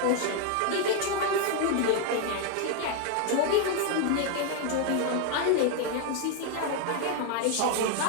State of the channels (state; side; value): different; both; correlation 0.01